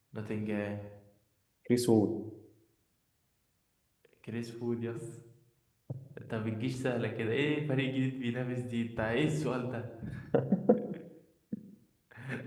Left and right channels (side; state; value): both; identical; correlation 1.00